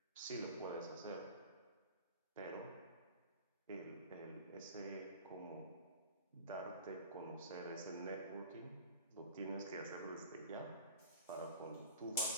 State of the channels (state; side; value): inverted; both; correlation -0.40